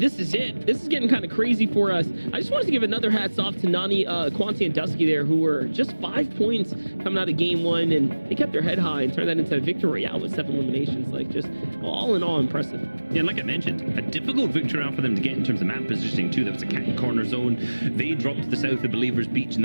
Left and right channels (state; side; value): inverted; both; correlation -1.00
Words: is it. This is getting kind of crazy for us. I just wanted to give another hats off to Nani, Quanti, and Dusky there, who were just 5 points coming out of game 1, and they kept their head high and turned that into a victory royale with 7 eliminations. Like, just all in all impressive. Yeah, like I mentioned, a difficult victory round for them to get in terms of map positioning too. That was a cat and corner zone. They dropped to the south of Believers Beach in